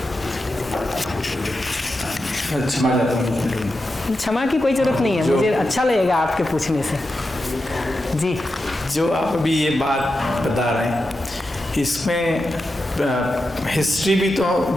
क्षमा की कोई जरूरत नहीं है, मुझे अच्छा लगेगा आपके पूछने से। जी, जो आप अभी ये बात बता रहे हैं, इसमें हिस्ट्री भी तो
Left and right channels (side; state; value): both; normal; correlation 0.89